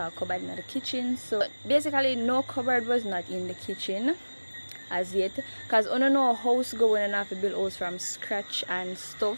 cupboard in the kitchen. So basically no cupboard was not in the kitchen as yet, because I don't know a house going and have to build house from scratch and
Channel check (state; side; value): inverted; both; correlation -1.00